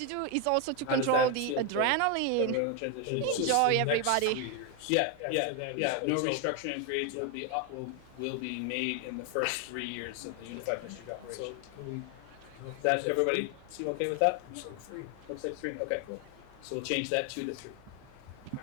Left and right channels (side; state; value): both; different; correlation 0.01